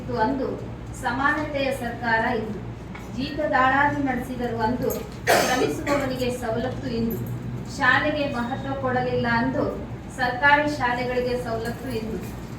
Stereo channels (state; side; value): identical; both; correlation 1.00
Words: ಅಂದು, ಸಮಾನತೆಯ ಸರ್ಕಾರ ಇಂದು. ಜೀತದಾಳಾಗಿ ನಡೆಸಿದರು ಅಂದು, ಶ್ರಮಿಸುವವನಿಗೆ ಸವಲತ್ತು ಇಂದು. ಶಾಲೆಗೆ ಮಹತ್ವ ಕೊಡಲಿಲ್ಲ ಅಂದು, ಸರ್ಕಾರಿ ಶಾಲೆಗಳಿಗೆ ಸವಲತ್ತು ಇಂದು.